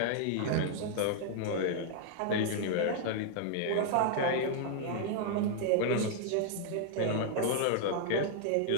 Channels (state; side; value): different; both; correlation -0.01